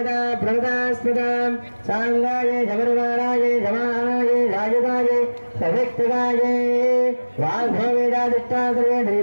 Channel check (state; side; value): inverted; both; correlation -1.00